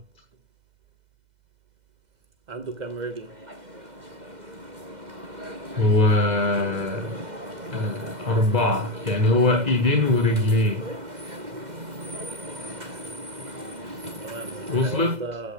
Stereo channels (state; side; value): late; left; 2.1 ms